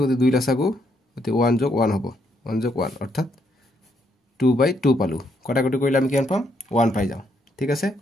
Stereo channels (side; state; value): both; normal; correlation 0.75